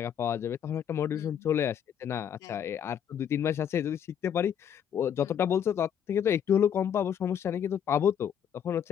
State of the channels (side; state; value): right; quieter; 8.8 dB